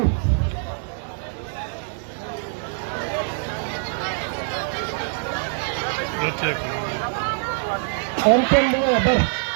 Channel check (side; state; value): left; silent; 63 dB below the other